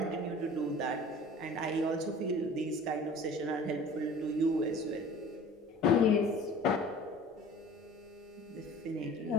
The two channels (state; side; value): normal; both; correlation 0.44